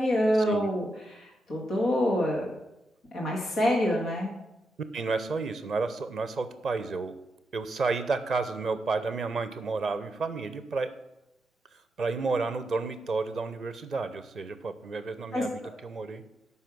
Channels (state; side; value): normal; both; correlation 0.84